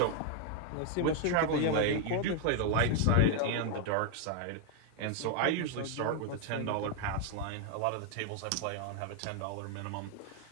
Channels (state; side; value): different; both; correlation 0.00